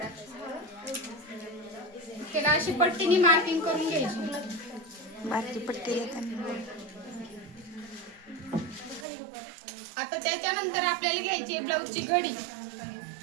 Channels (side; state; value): left; drops out; at 9.1 s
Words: त्याला अशी पट्टीने मार्किंग करून घ्यायची बारकी पट्टी आता त्याच्यानंतर आपल्याला घ्यायची ब्लाऊजची